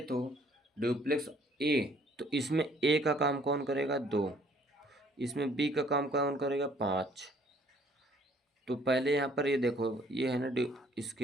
तो डुप्लेक्स ए, तो इसमें ए का काम कौन करेगा 2, इसमें बी का काम कौन करेगा 5। तो पहले यहाँ पर ये देखो ये है ना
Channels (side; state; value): both; normal; correlation 0.61